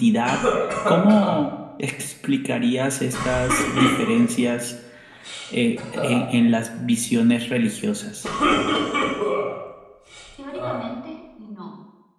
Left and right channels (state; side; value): identical; both; correlation 1.00